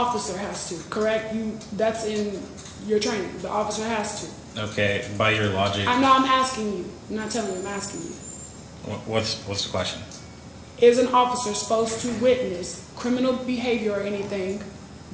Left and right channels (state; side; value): identical; both; correlation 1.00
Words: has to, correct? That's in your training, the officer has to. Okay, by your logic, I'm asking you, I'm not telling you, I'm asking you. what's the question? Is an officer supposed to witness criminal behavior or anything